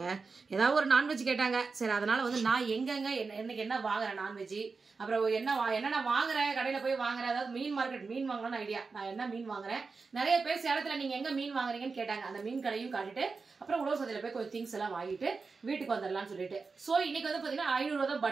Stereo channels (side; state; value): left; quieter; 4.5 dB